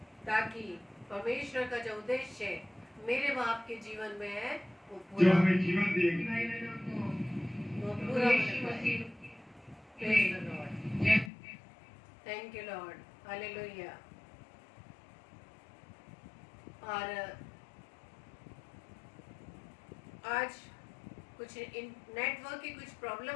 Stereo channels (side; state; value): right; drops out; at 11.3 s